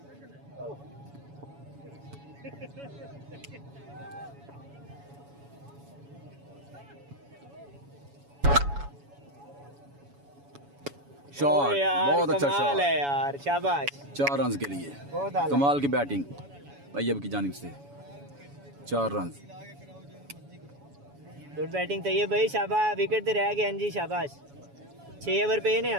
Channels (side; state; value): left; late; 7.1 ms